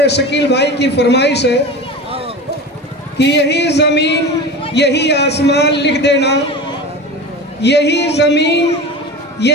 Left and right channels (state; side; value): normal; both; correlation 0.30